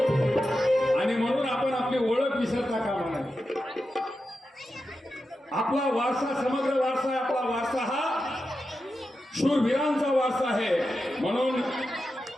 आणि म्हणून आपण आपली ओळख विसरता कामा नये. आपला वारसा समग्र वारसा आहे. आपला वारसा हा शूरवीरांचा वारसा आहे. म्हणून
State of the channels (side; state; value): both; normal; correlation 0.90